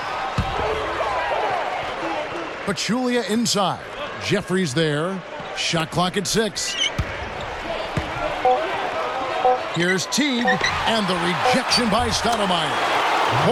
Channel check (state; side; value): identical; both; correlation 1.00